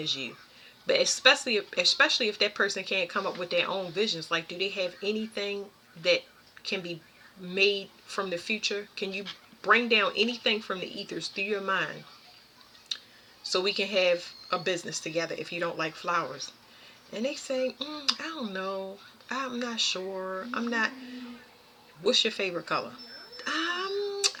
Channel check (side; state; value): both; identical; correlation 1.00